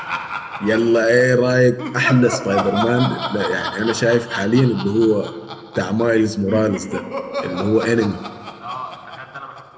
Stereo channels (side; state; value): both; identical; correlation 1.00